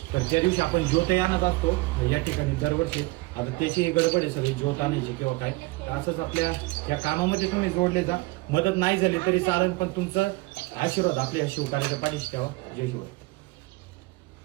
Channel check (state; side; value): quieter; left; 22.9 dB